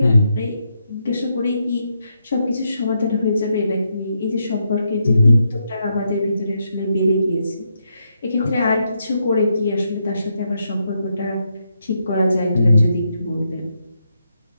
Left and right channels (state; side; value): inverted; both; correlation -0.81